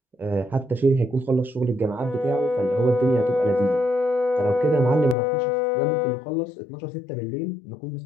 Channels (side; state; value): right; drops out; at 5.2 s